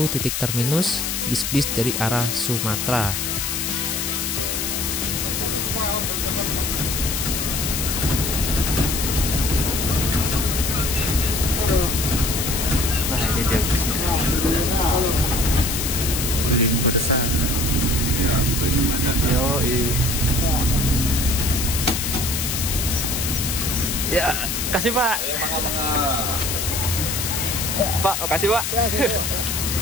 titik terminus bis-bis dari arah Sumatera. Ya, kasih Pak. Pak, kasih Pak.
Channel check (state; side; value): noise; left; hiss, 1 dB below the sound